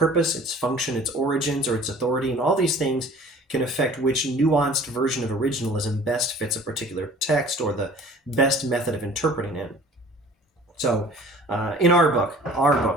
its function, its origins, or its authority, and all these things can affect which nuanced version of originalism best fits a particular text or the best method of interpreting it. So in our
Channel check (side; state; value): both; normal; correlation 0.48